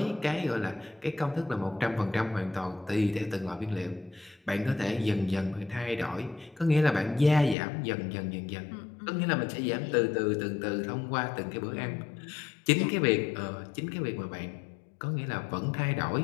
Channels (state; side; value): drops out; right; at 7.6 s